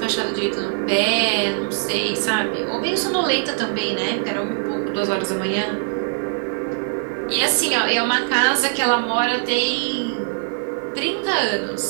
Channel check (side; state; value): left; silent; 60 dB below the other